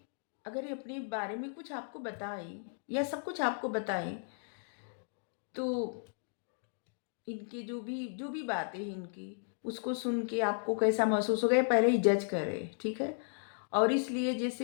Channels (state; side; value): silent; right; digital silence